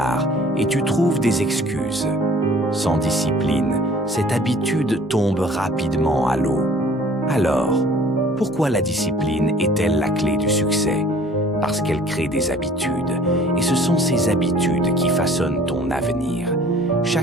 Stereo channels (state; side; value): normal; both; correlation 0.52